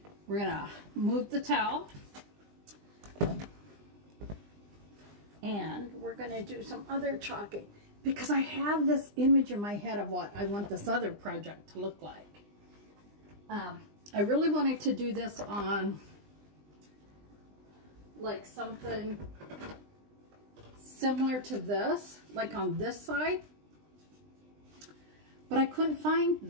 we're going to move the towel and we're going to do some other chalking because I have this image in my head of what I want this other project to look like. I really wanted to do this on like something similar to this, like on this side, but I couldn't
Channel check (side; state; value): left; late; 20 ms